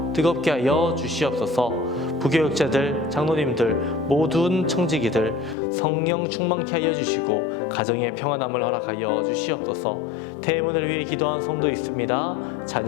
뜨겁게 하여 주시옵소서. 부교육자들, 장로님들, 모든 청지기들 성령 충만케 하여 주시고 가정의 평안함을 허락하여 주시옵소서. 태문을 위해 기도한 성도 있습니다.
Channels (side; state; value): right; drops out; at 5.6 s